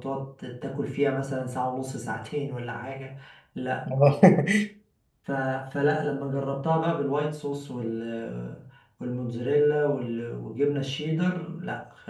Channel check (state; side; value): identical; both; correlation 1.00